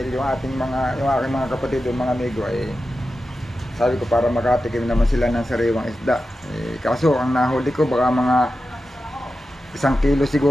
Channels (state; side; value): normal; both; correlation 0.92